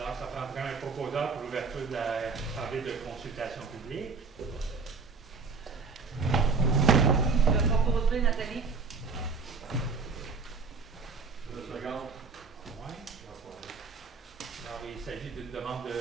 ça prendrait un proposeur pour l'ouverture de l'Assemblée de consultation publique. Je vais proposer Nathalie. Le second. Oui. Alors, il s'agit d'une demande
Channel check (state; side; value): quieter; left; 4.6 dB